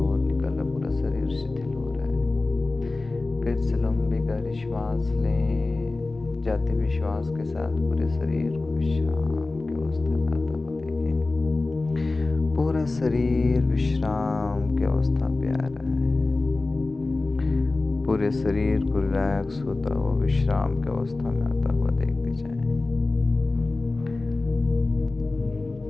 निकल रहा, पूरा शरीर शिथिल हो रहा है। फिर से लंबी गहरी श्वास लें। जाते हुए श्वास के साथ पूरे शरीर को विश्राम की अवस्था में आता हुआ देखें। पूरा शरीर विश्राम की अवस्था पे आ रहा है। पूरे शरीर को रिलैक्स होता हुआ विश्राम की अवस्था में आता हुआ देखते जाएं।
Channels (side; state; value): right; quieter; 3.3 dB